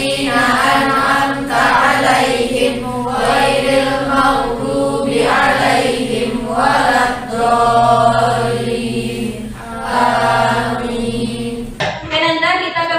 an'amta 'alaihim ghairil maghdubi 'alaihim waladdallin. Amin. Kemudian kita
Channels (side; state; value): both; identical; correlation 1.00